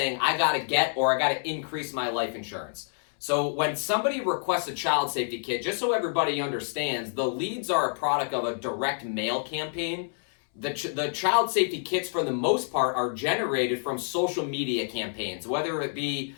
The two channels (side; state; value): right; silent; 60 dB below the other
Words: I got to get or I got to increase my life insurance. So when somebody requests a child safety kit, just so everybody understands, the leads are a product of a direct mail campaign. The child safety kits, for the most part, are generated from social media campaigns, whether it be